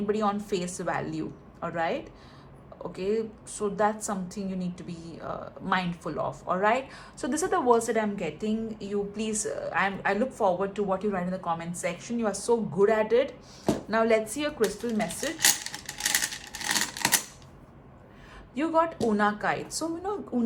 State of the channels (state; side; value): identical; both; correlation 1.00